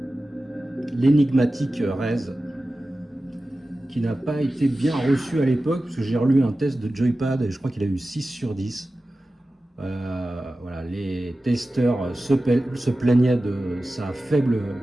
L'énigmatique Rez, qui n'a pas été bien reçu à l'époque, parce que j'ai relu un test de Joypad et je crois qu'il a eu 6 sur 10. Voilà, les testeurs se plaignaient de sa faible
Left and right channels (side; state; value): both; normal; correlation 0.95